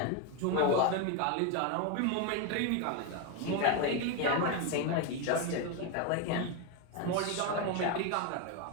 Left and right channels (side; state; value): both; different; correlation 0.02